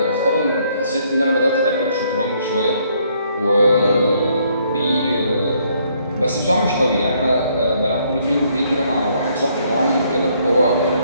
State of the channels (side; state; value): both; inverted; correlation -0.68